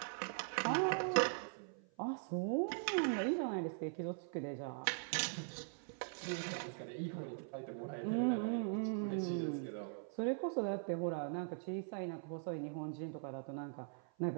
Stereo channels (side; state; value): left; silent; 50 dB below the other